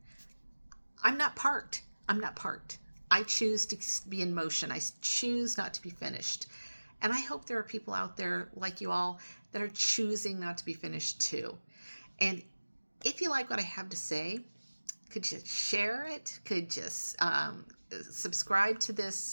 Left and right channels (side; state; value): both; inverted; correlation -1.00